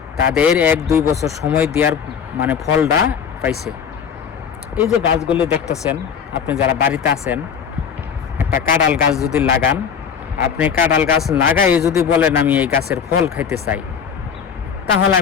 তাদের 1-2 বছর সময় দেওয়ার মানে ফলটা পাইছে। এই যে গাছগুলো দেখতেছেন, আপনি যারা বাড়িতে আছেন, একটা কাঁঠাল গাছ যদি লাগান, আপনি কাঁঠাল গাছ লাগাই যদি বলেন আমি এই গাছের ফল খাইতে চাই, তাহলে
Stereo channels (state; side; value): quieter; right; 7.2 dB